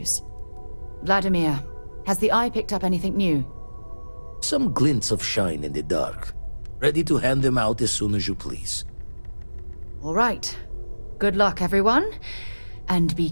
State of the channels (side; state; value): both; inverted; correlation -1.00